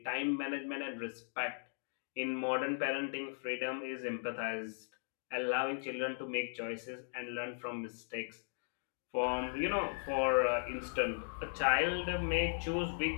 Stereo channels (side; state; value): right; silent; digital silence